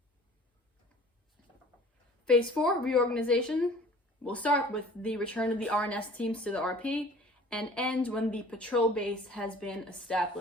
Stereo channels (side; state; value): both; normal; correlation 0.48